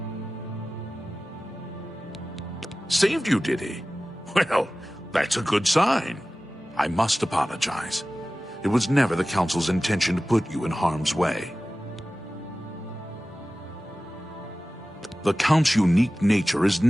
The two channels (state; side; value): normal; both; correlation 0.96